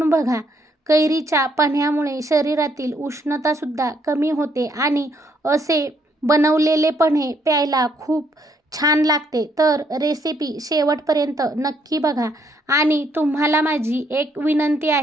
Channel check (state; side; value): normal; both; correlation 0.71